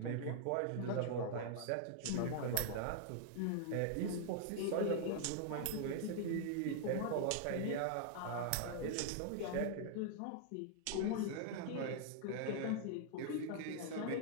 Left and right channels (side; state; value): both; different; correlation -0.01